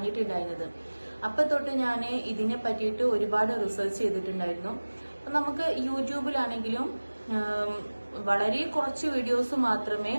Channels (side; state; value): both; inverted; correlation -1.00